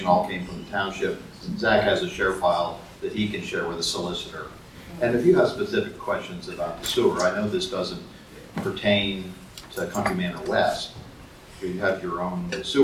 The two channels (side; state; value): both; identical; correlation 1.00